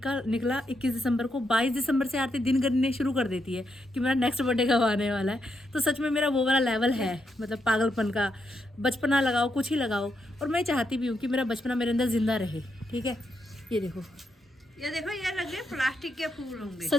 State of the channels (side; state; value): both; normal; correlation 0.81